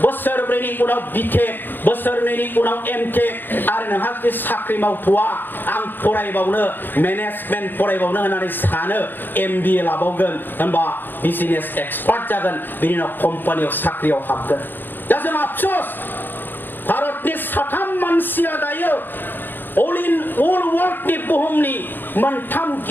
बोसोरब्रैनि उनाव बिटेक बोसोरनैनि उनाव एमटेक आरो नोंहा जुदि साख्रि मावथ'वा आं फरायबावनो मेनेजमेन्ट फरायबावनो होननानै सानो MBA लाबावगोन होनबा बिजनेस एक्सपार्ट जागोन बिनि उनाव कम्पानियाव साख्रियाव हाबगोन दा जों आफसोस भारतनि 3 मानसिया दायो all worldनि बुहुमनि मोनथाम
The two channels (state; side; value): late; right; 0.094 ms